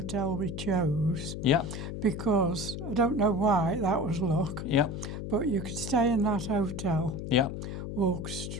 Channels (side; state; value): left; noise; hum, 6 dB below the sound